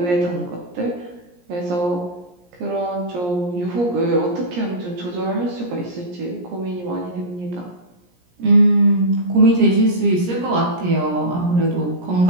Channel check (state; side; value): late; left; 17 ms